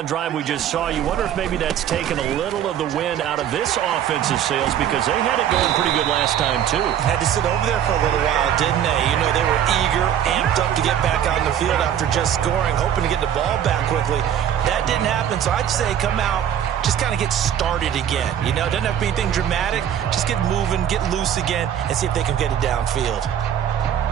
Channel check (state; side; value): quieter; left; 9.8 dB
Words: drive we just saw, you wonder if maybe that's taken a little of the wind out of this offensive sails, because they had it going pretty good last time, too. Had to sit over there for a little while, didn't they? You know, they were eager, amped up to get back on the field after just scoring, hoping to get the ball back quickly. That didn't happen, so I'd say come out, just kind of get started again. You know, it doesn't have to be anything dramatic. Just get moving, get loose again, and see if they can get it downfield.